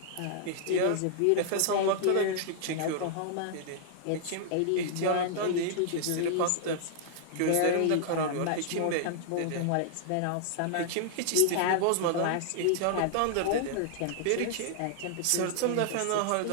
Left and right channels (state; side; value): different; both; correlation -0.01